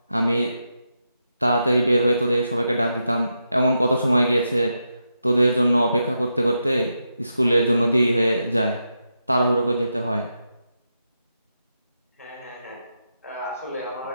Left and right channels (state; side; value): inverted; both; correlation -0.86